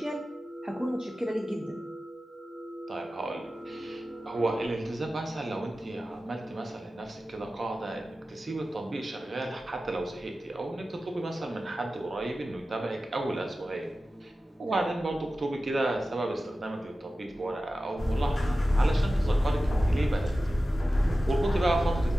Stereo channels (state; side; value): normal; both; correlation 0.95